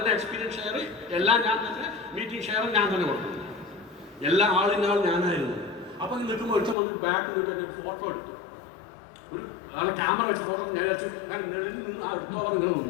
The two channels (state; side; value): drops out; right; at 6.8 s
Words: എക്സ്പീരിയൻസ് ഷെയർ, എല്ലാം ഞാൻ തന്നെ, മീറ്റിംഗ് ഷെയർ ഞാൻ തന്നെ കൊടുക്കും. എല്ലാ ആളിനാൾ ഞാനായിരുന്നു. അപ്പം നിൽക്കുമ്പോൾ ഒരുത്തം വന്ന് ബാക്ക് നിൽക്കാൻ ഒരു ഫോട്ടോ എടുത്തു. ഒരു ആളെ ക്യാമറ വെച്ച് ഫോട്ടോ ഞാൻ ഇങ്ങനെ